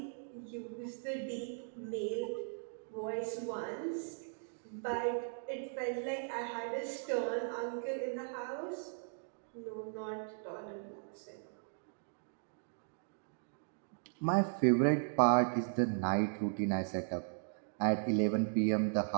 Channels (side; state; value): left; silent; digital silence